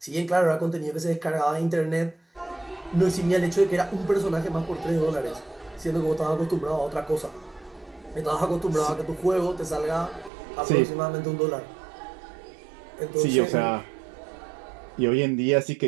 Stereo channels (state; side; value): drops out; left; at 10.3 s